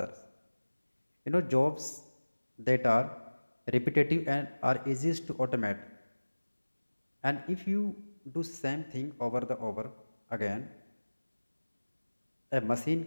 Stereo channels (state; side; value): inverted; both; correlation -1.00